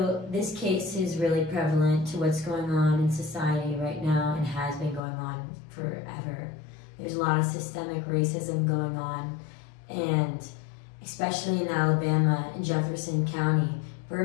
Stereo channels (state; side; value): drops out; right; at 5.0 s